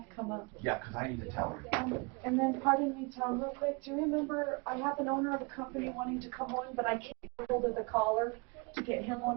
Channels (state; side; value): quieter; left; 29.8 dB